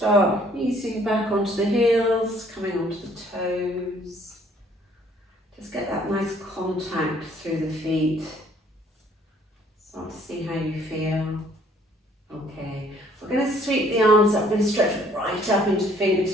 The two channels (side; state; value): both; normal; correlation 0.61